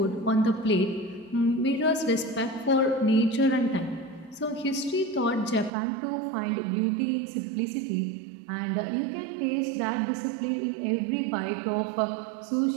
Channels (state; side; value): drops out; left; at 5.7 s